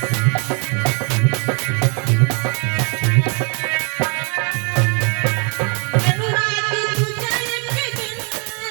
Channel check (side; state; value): left; quieter; 37.3 dB